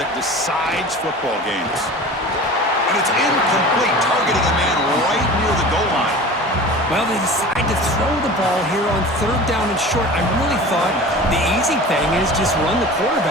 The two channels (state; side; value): normal; both; correlation 0.38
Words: decides football games. And it's incomplete, targeting a man right near the goal line. Well, they decide to throw the ball here on third down and short. I really thought the easy thing is just run the